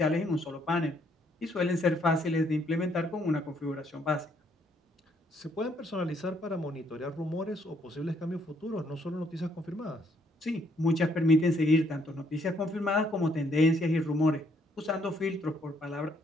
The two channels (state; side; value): normal; both; correlation 0.69